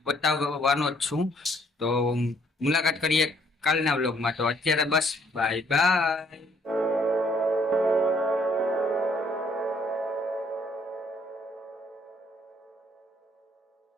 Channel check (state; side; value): normal; both; correlation 0.65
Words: બતાવવાનો જ છું. તો મુલાકાત કરીએ કાલના વ્લોગમાં. તો અત્યારે બસ બાય બાય.